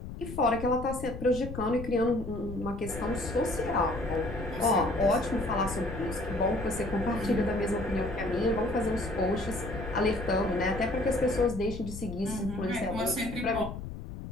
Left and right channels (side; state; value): left; noise; rumble, 9 dB below the sound